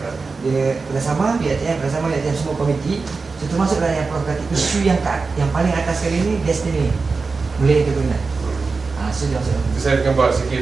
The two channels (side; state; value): left; quieter; 4.3 dB